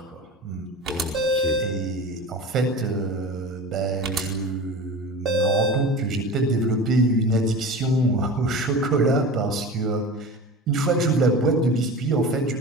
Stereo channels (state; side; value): normal; both; correlation 0.33